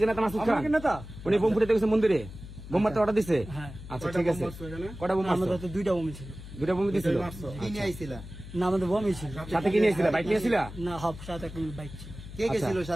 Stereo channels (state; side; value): noise; left; hum, 13 dB below the sound